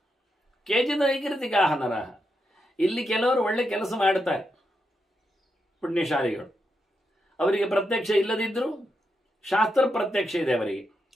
ನೈಕೃತಿಕಾಹ ನರಹ. ಇಲ್ಲಿ ಕೆಲವರು ಒಳ್ಳೆ ಕೆಲಸ ಮಾಡುತ್ತಾರೆ, ಪುಣ್ಯಶಾಲಿಗಳು. ಅವರಿಗೆ ಪ್ರತ್ಯಕ್ಷ ಇಲ್ಲದಿದ್ದರೂ ಶಾಸ್ತ್ರ ಪ್ರತ್ಯಕ್ಷ ಇದೆ, ಅವರಿಗೆ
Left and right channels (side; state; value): both; normal; correlation 0.84